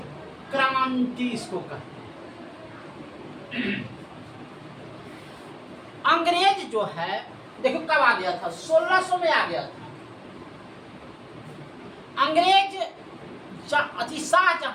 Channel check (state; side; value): identical; both; correlation 1.00